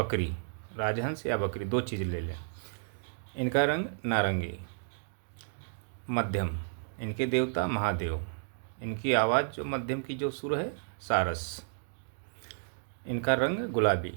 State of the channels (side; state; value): left; silent; digital silence